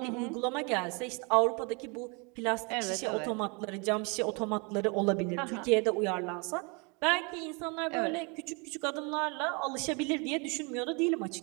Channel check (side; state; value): left; quieter; 31.9 dB